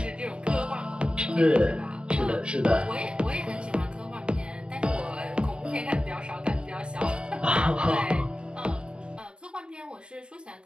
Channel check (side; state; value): left; late; 0.053 ms